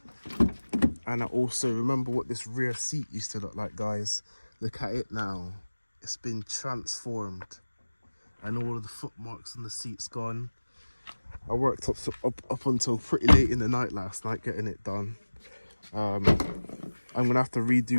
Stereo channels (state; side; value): inverted; both; correlation -1.00